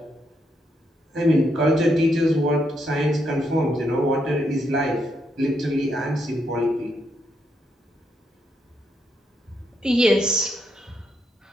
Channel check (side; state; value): both; normal; correlation 0.78